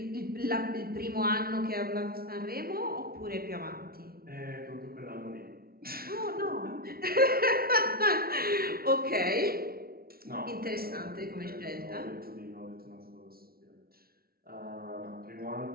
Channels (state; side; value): late; left; 0.44 ms